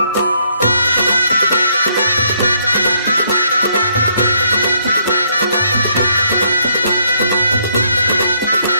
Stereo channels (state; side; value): inverted; both; correlation -0.70